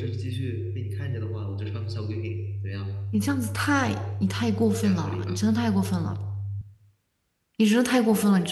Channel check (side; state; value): both; identical; correlation 1.00